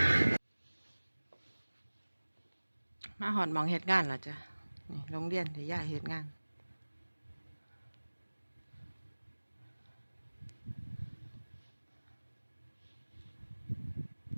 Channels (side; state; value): both; inverted; correlation -1.00